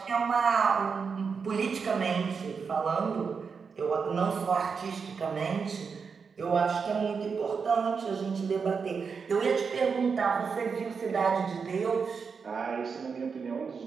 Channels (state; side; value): quieter; left; 5.6 dB